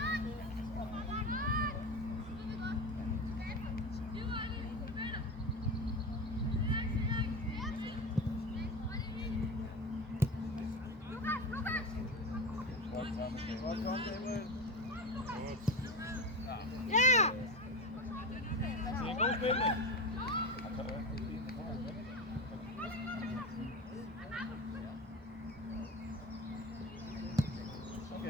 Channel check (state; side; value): normal; both; correlation 0.23